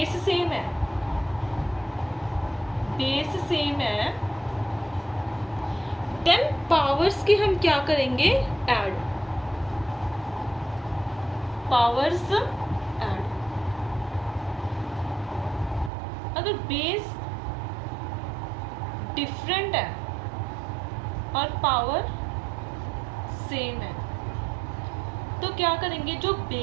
सेम है, बेस सेम है, देन पावर्स की हम क्या करेंगे, ऐड, पावर्स ऐड। अगर बेस डिफरेंट है और पावर सेम है तो क्या करेंगे, जो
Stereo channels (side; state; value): left; drops out; at 15.9 s